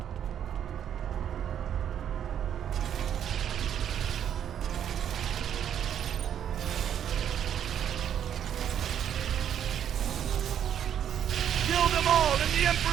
Kill them all in the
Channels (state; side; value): quieter; left; 9.4 dB